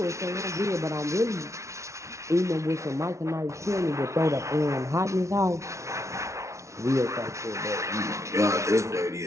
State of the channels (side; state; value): left; late; 0.14 ms